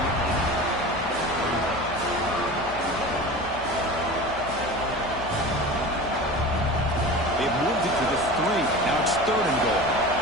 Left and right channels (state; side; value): noise; left; hum, 15 dB below the sound